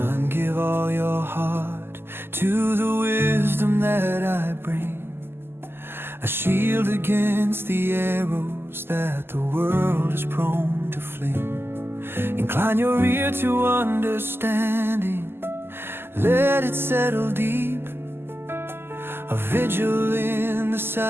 give all your heart to the wisdom that I bring, a shield against the arrows that the world is prone to fling. Incline your ear to understanding, let it settle deep, a vigil in the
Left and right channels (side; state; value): left; late; 0.11 ms